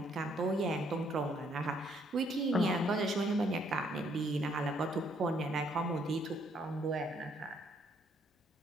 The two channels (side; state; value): both; normal; correlation 0.69